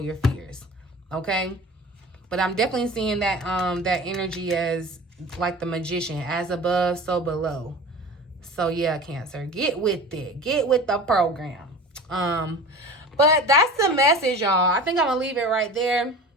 fears. Okay, but I'm definitely seeing that that energy as like the magician, as above, so below. So yeah, Cancer, get with it. Get with the program. But that's the message, y'all. I think I'm gonna leave it right there.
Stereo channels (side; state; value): both; normal; correlation 0.37